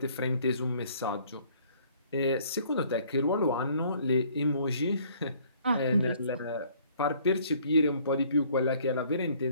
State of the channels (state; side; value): inverted; both; correlation -0.59